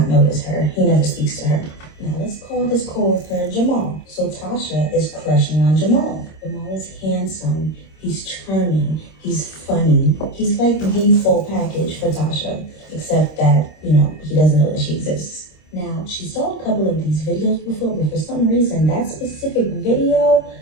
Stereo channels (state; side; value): late; right; 26 ms